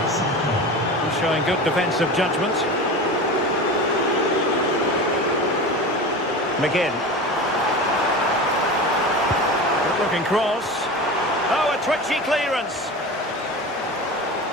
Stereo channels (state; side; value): normal; both; correlation 0.30